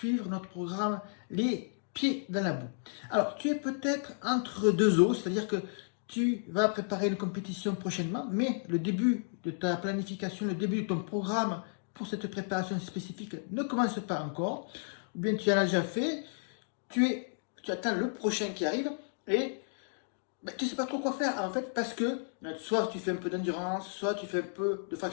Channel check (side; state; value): right; silent; digital silence